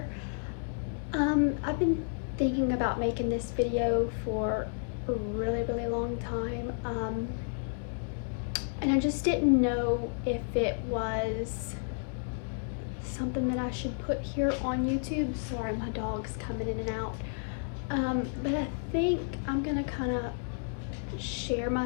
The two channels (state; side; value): silent; right; digital silence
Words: I've been thinking about making this video for a really long time. And I just didn't know if it was something that I should put here on YouTube. Sorry, my dog's coming in and out. But I think I'm gonna kind of share